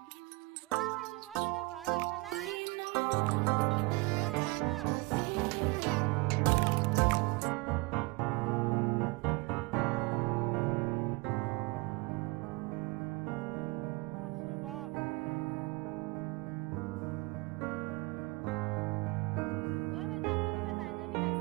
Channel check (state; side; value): quieter; left; 25.3 dB